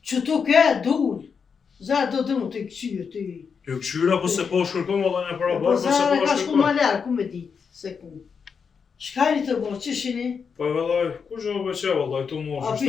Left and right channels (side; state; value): right; quieter; 6.1 dB